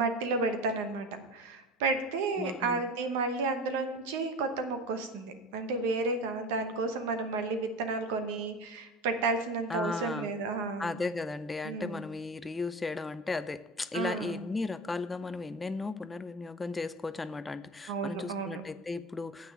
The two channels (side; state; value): both; normal; correlation 0.31